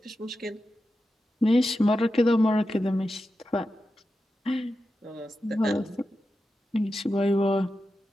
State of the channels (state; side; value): normal; both; correlation 0.90